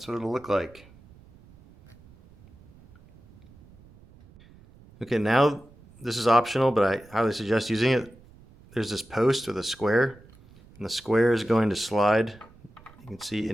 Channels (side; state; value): right; noise; rumble, 25 dB below the sound